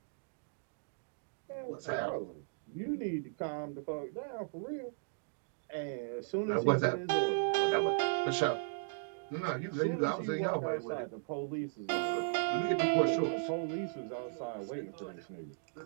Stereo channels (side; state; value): left; silent; digital silence